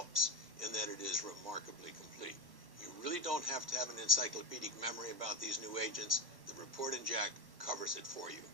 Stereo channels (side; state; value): left; late; 1.1 ms